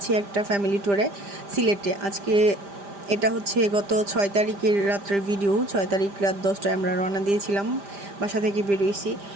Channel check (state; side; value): late; left; 5.0 ms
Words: একটা ফ্যামিলি ট্যুরে সিলেটে। আজকে এটা হচ্ছে গত 6 তারিখের রাত্রের ভিডিও। 6 তারিখ রাত 10টায় আমরা রওনা দিয়েছিলাম, বাসা থেকে বেরোইছি।